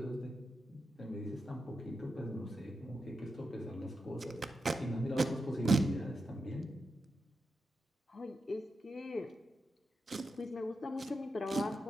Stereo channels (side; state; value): both; normal; correlation 0.87